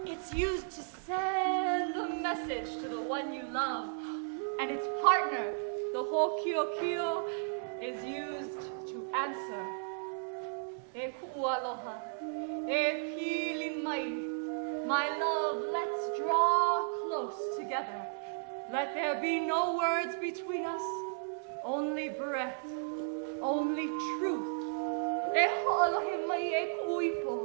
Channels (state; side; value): silent; left; digital silence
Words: It's used to send a message to the one you love, and its partner, the hokiokio, is used to answer. E kualoha, e pili mai. My love, let's draw close together. Let there be no words between us, only breath, only truth. E ho'alohe mai e